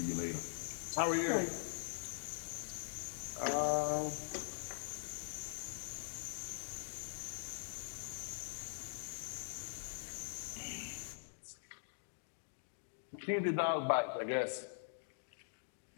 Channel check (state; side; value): silent; right; digital silence